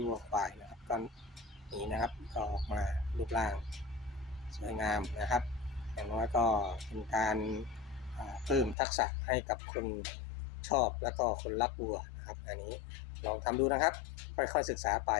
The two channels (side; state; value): right; drops out; at 8.8 s